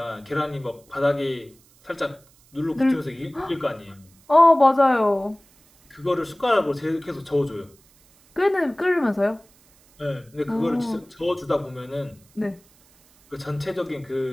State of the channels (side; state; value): right; noise; hiss, 30 dB below the sound